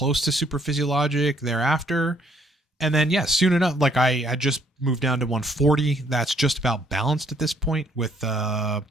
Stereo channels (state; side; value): normal; both; correlation 0.66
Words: to super physiologic thereafter. And then, yeah, soon enough, like I had just moved down to 140. That's just about balanced at this point with